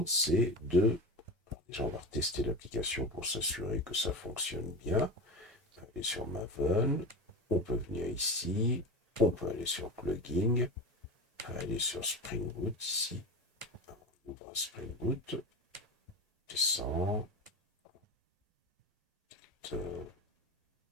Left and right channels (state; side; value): normal; both; correlation 0.26